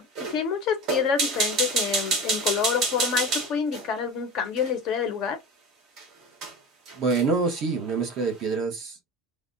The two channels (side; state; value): both; normal; correlation 0.30